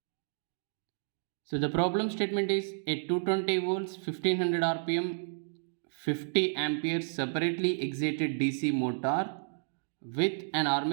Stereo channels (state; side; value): silent; left; digital silence